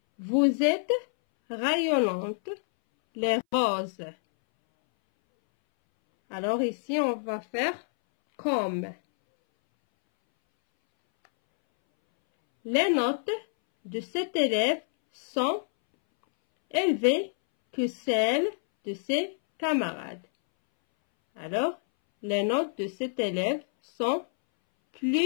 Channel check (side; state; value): right; silent; 60 dB below the other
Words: Vous êtes rayonnante, les roses. Alors, ici, on va faire comme. Les notes de cet élève sont élevées que celles de ses camarades. Alors, les notes de cet élève sont